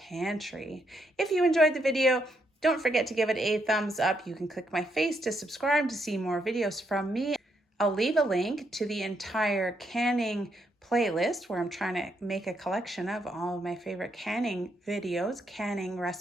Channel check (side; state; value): both; normal; correlation 0.77